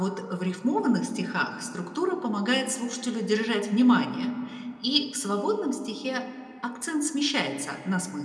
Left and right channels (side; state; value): both; identical; correlation 1.00